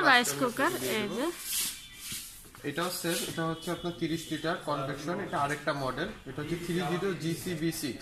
রাইস কুকার। এই যে এটাও সেম, এটা হচ্ছে আপনার 30 লিটার কনভেকশন। এটা আরেকটা মডেল, এটা হচ্ছে 30 GCB6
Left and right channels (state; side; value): identical; both; correlation 1.00